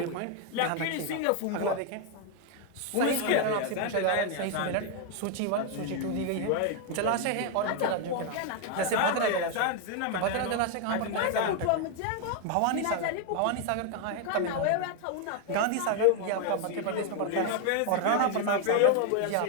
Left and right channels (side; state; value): both; different; correlation 0.00